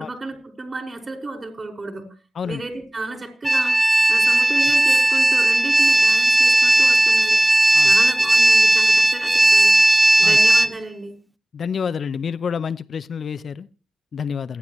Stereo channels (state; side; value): normal; both; correlation 0.98